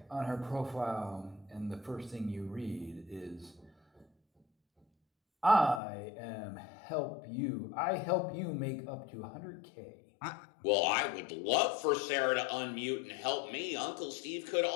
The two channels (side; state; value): right; drops out; at 5.8 s